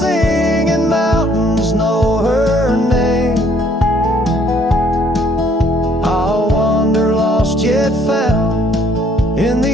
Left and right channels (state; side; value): normal; both; correlation 0.63